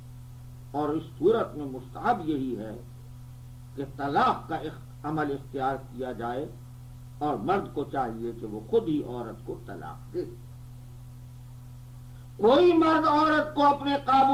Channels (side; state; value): both; identical; correlation 1.00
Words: اور اس صورت میں مستحب یہی ہے کہ طلاق کا عمل اختیار کیا جائے اور مرد کو چاہیے کہ وہ خود ہی عورت کو طلاق دے. کوئی مرد عورت کو اپنے